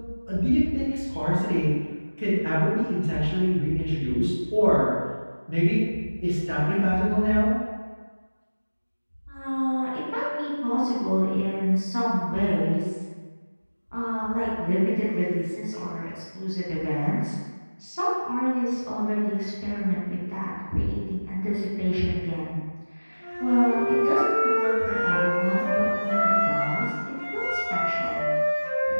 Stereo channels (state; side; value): inverted; both; correlation -1.00